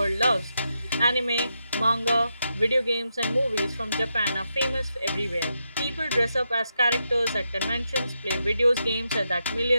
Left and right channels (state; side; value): inverted; both; correlation -0.84